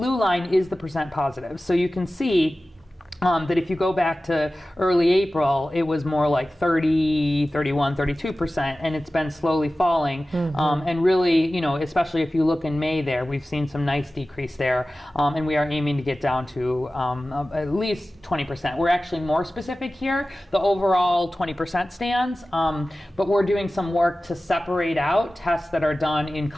line is the percent positive. So you can see that if you go back to early April, it was more like 30, 31, 32%, and it's been slowly falling. And really, especially if you look in May there, we've seen some nice decrease there, and we are aiming to get down to at least 20%. We're actually more specific here. The overall 20% stands, but we're doing some work to separate out tests that are done in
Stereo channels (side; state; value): both; normal; correlation 0.96